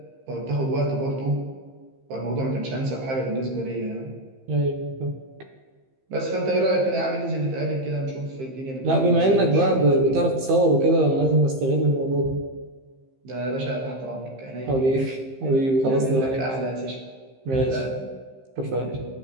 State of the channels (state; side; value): late; left; 15 ms